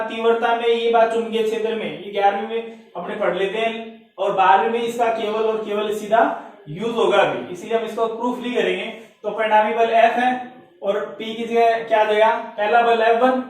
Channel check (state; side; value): identical; both; correlation 1.00